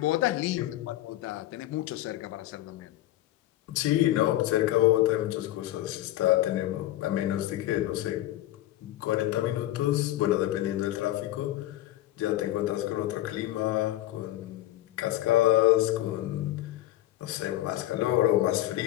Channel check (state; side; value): quieter; right; 14.8 dB